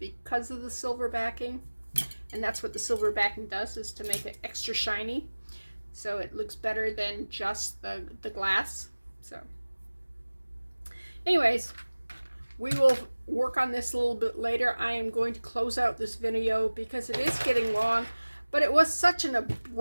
of the silver backing. And that's what the silver backing does, is to make it extra shiny. So it looks better than just the glass. So anyways, we will work on this a little bit later. I am going to close out this video because it is getting long, but it was such an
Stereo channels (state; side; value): inverted; both; correlation -1.00